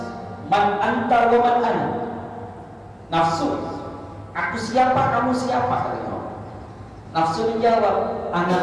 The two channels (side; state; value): both; identical; correlation 1.00